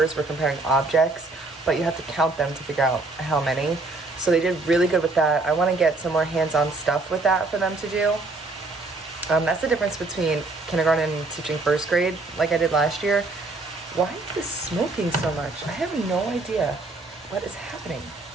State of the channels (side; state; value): left; quieter; 3.3 dB